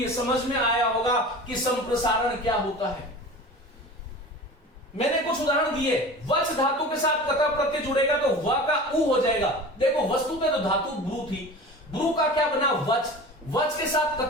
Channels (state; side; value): normal; both; correlation 0.36